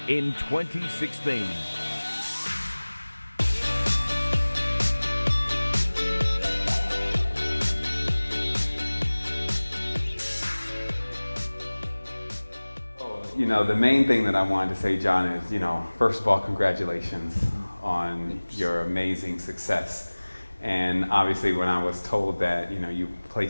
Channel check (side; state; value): both; inverted; correlation -1.00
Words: in 2016. You know, the main thing that I wanted to say, John, is, first of all, congratulations on your amazing success. And obviously when I was told that, you